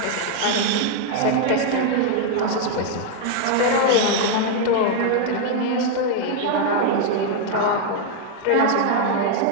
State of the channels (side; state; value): both; different; correlation 0.00